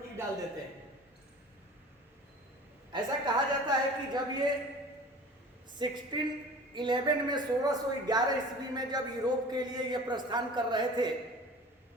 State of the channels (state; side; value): normal; both; correlation 0.41